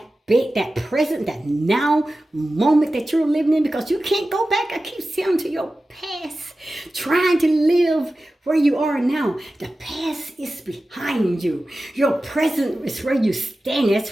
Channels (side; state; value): both; normal; correlation 0.94